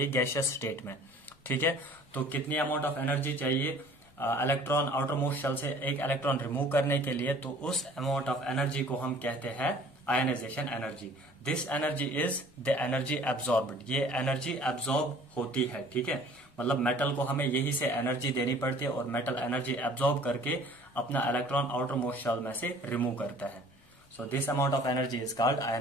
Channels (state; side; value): noise; left; rumble, 29 dB below the sound